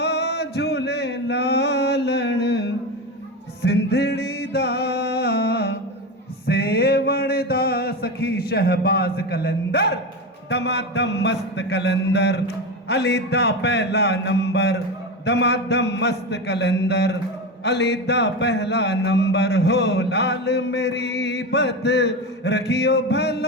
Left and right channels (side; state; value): both; normal; correlation 0.20